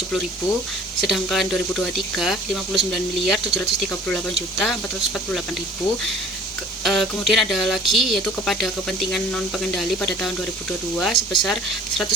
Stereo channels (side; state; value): both; normal; correlation 0.49